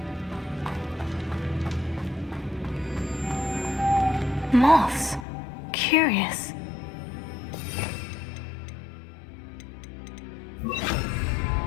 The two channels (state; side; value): drops out; right; at 5.2 s